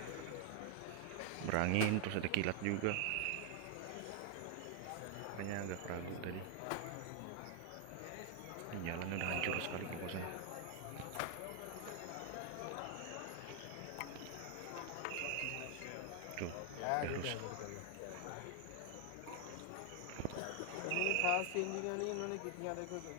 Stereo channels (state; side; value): different; both; correlation 0.00